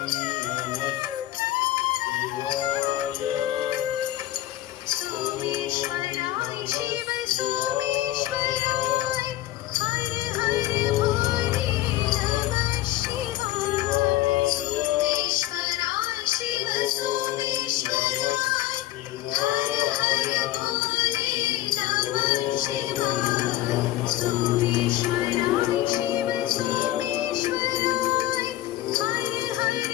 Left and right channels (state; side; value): quieter; right; 15.0 dB